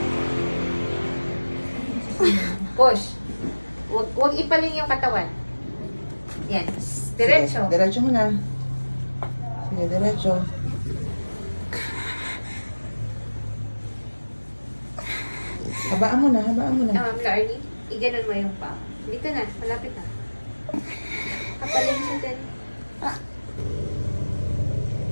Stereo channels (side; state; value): both; inverted; correlation -1.00